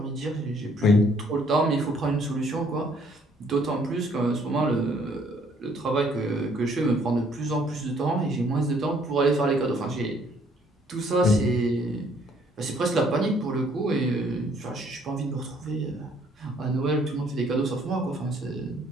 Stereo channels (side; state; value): both; normal; correlation 0.63